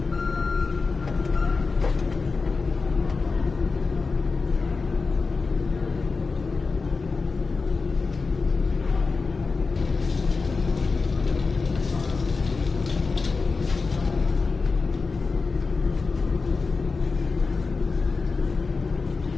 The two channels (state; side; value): quieter; right; 4.3 dB